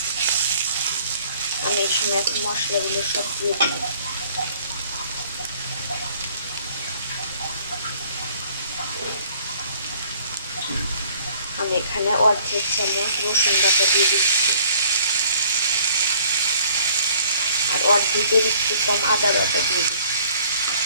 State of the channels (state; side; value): inverted; both; correlation -0.57